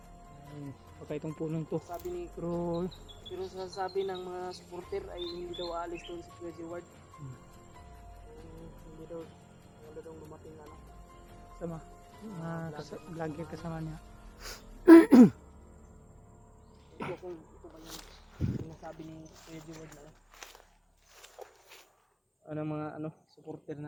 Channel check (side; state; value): both; identical; correlation 1.00